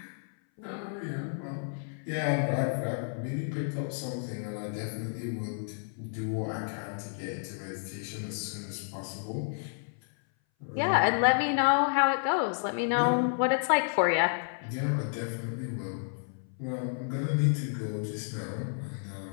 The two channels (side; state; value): right; silent; 57 dB below the other